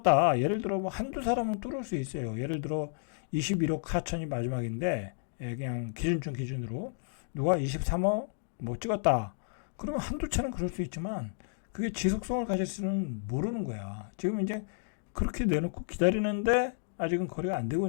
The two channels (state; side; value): silent; right; digital silence